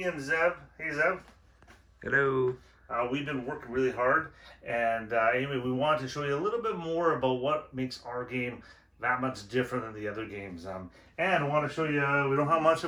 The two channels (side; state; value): both; identical; correlation 1.00